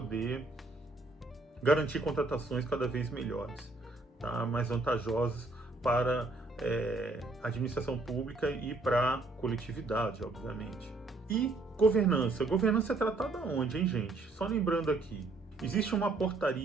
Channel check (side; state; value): left; quieter; 3.3 dB